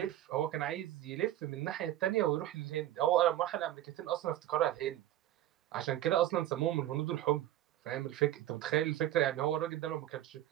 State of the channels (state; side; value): quieter; left; 13.4 dB